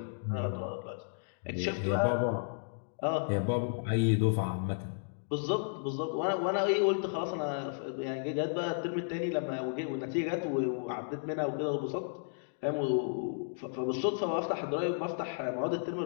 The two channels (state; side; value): silent; right; digital silence